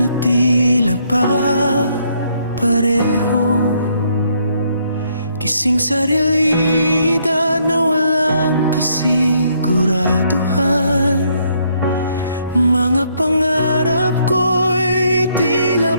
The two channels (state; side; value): inverted; both; correlation -0.71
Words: tila ba pareho, gising sa realidad na walang kasiguraduhan. Mga pangarap ko'y